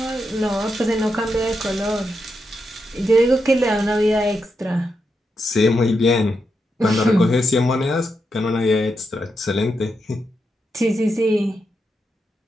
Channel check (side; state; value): both; normal; correlation 0.84